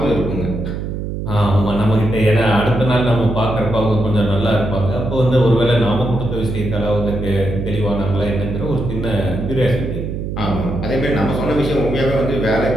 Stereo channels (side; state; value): right; noise; hum, 5 dB below the sound